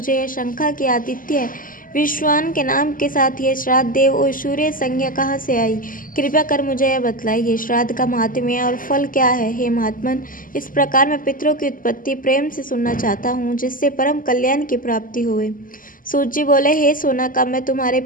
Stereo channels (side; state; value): right; late; 0.40 ms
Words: यह शंका कि आदित्य विश्वान के नाम के साथ यह श्राद्ध देव और सूर्य संज्ञा कहाँ से आई। कृपया कर मुझे यह बतलाइए, श्राद्ध का महात्म्य और फल क्या है। हे महात्मन, इस प्रकार मैं पितरों की उत्पत्ति प्रेम से सुनना चाहता हूँ, जिससे परम कल्याण की प्राप्ति होवे। सूत जी बोले, हे सोनाका, मैं तुम्हारे